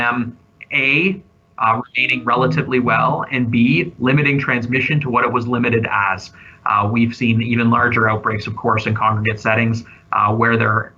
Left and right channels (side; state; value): both; identical; correlation 1.00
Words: A, remaining relatively well, and B, limiting transmission to what it was limited as. We've seen even larger outbreaks, of course, in congregate settings where there